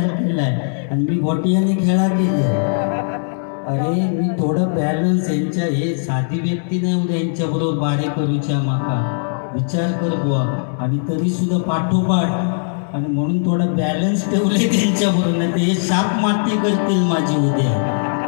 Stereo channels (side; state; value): right; silent; digital silence